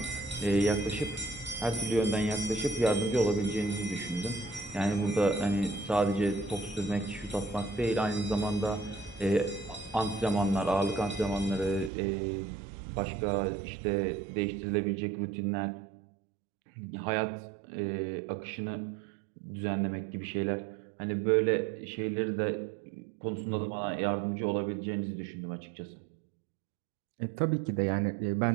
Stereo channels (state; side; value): drops out; left; at 11.9 s